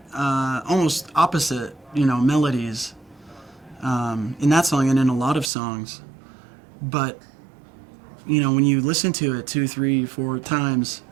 almost opposite, melodies in that song and in a lot of songs. But when you listen to it 2, 3, 4 times,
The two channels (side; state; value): left; drops out; at 5.5 s